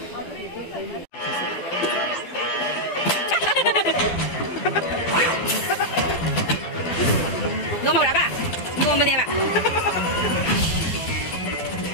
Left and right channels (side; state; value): right; late; 12 ms